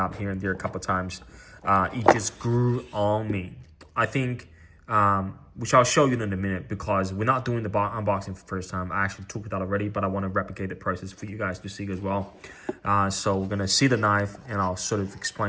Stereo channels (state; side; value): identical; both; correlation 1.00